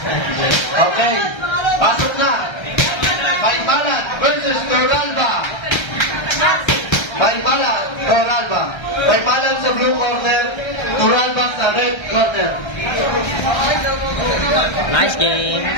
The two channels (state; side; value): late; right; 1.3 ms